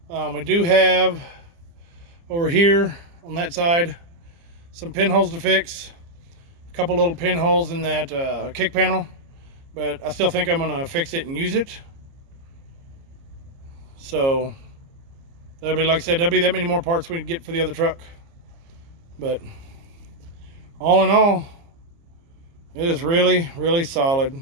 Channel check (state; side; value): late; left; 30 ms